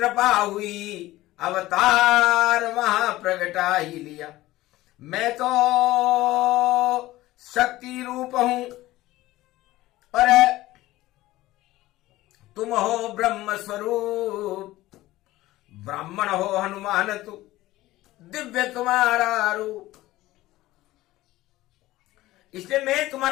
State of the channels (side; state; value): right; quieter; 17.0 dB